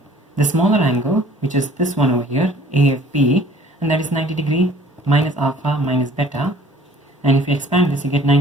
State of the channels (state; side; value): normal; both; correlation 0.53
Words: the smaller angle, which is this one over here, AFB, and that is 90 degree minus alpha minus beta. And if you expand this, you get